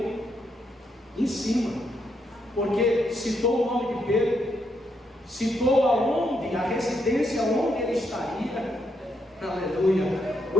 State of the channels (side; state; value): both; normal; correlation 0.78